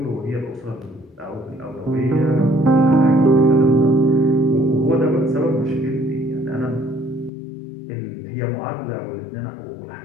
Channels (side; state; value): right; drops out; at 7.3 s